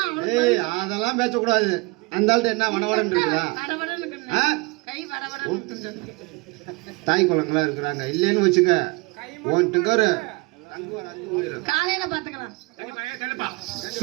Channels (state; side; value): quieter; left; 26.0 dB